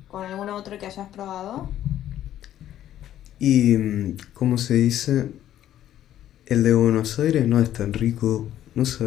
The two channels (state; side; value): quieter; right; 11.9 dB